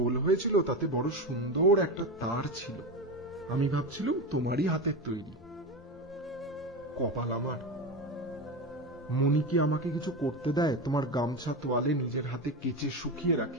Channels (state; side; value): normal; both; correlation 0.20